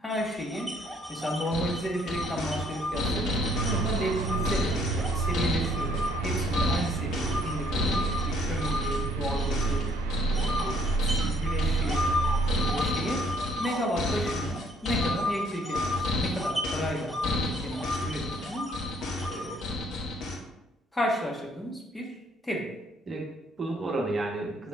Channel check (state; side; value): normal; both; correlation 0.64